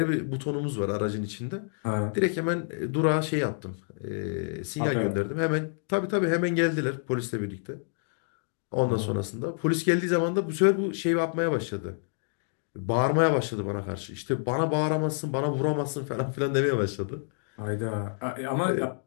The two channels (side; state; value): right; silent; digital silence